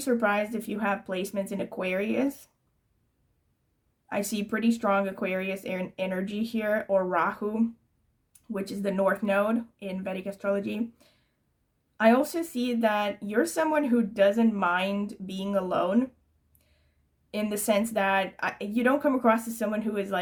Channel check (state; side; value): identical; both; correlation 1.00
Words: if you have placements in Aquarius. I see pretty strong Aquarius energy here, or Rahu, which is the North Node in Vedic astrology. I also see that you're someone who doesn't mind being alone, in the sense that you don't come across as someone who is